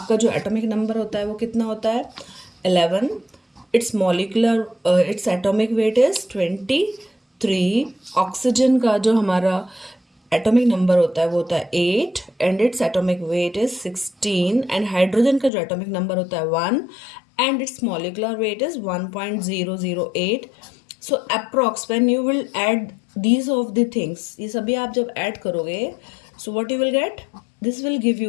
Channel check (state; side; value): drops out; right; at 15.5 s